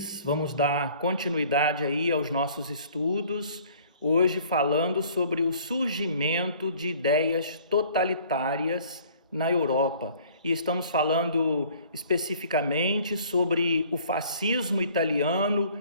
Vamos dar continuidade aí aos nossos estudos, hoje falando sobre o surgimento de ideias totalitárias na Europa. E estamos falando especificamente sobre o fascismo italiano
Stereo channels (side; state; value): both; inverted; correlation -0.54